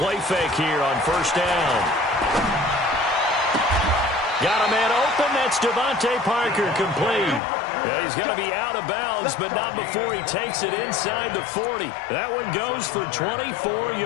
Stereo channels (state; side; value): drops out; right; at 7.4 s